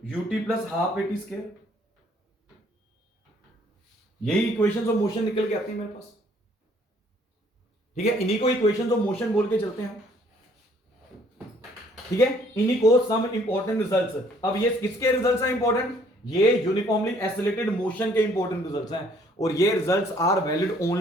ut plus half a t square. यही इक्वेशंस ऑफ मोशन निकल के आती है मेरे पास। ठीक है, इन्हीं को इक्वेशंस ऑफ मोशन बोल के चलते हैं। ठीक है, इन्हीं को सम इंपॉर्टेंट रिजल्ट्स। अब ये किसके रिजल्ट्स हैं इंपॉर्टेंट? ये यूनिफॉर्मली एसिलेटेड मोशन के इंपॉर्टेंट रिजल्ट्स हैं, और ये results are valid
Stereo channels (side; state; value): both; normal; correlation 0.62